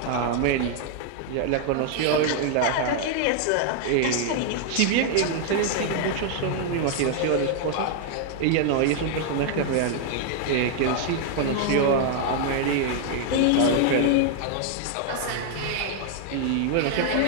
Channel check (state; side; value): different; both; correlation 0.00